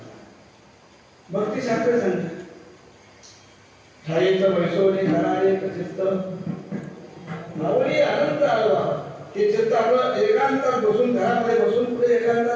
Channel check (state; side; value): identical; both; correlation 1.00